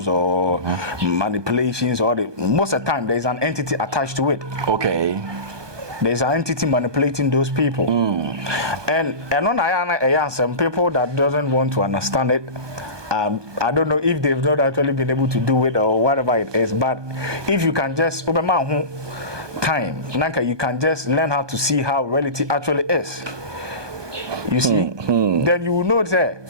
or manipulations, or most of the time there is an entity attached to it. Okay. There is an entity manipulating those people. And on some people that doesn't want to understand it. I don't know if they've not actually been able to do it or whatever it is, but if you can just time, you can just learn how to see how reality actually is. You see, then you will know that.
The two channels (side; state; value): left; late; 1.2 ms